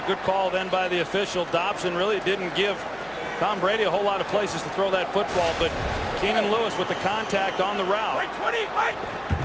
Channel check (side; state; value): right; noise; hum, 25 dB below the sound